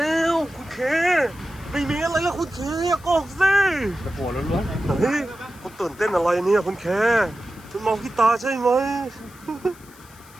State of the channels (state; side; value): noise; left; hiss, 24 dB below the sound